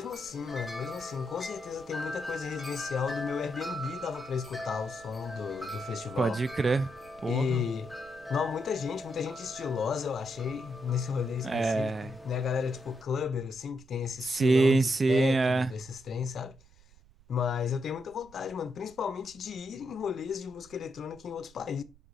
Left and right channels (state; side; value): noise; right; rumble, 25 dB below the sound